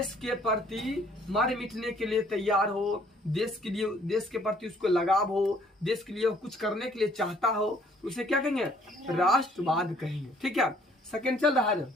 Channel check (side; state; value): both; normal; correlation 0.61